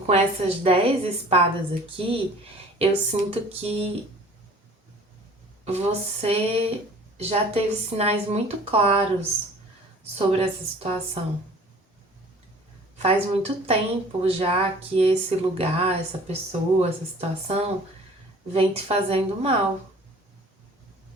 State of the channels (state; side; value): normal; both; correlation 0.48